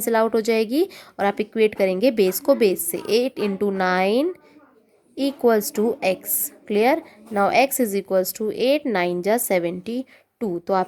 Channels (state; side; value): identical; both; correlation 1.00